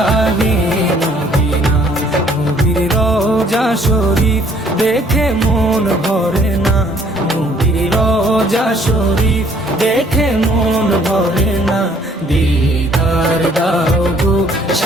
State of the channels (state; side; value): normal; both; correlation 0.61